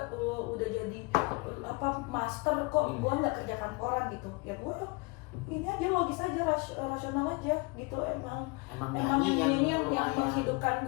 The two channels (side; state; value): right; quieter; 27.7 dB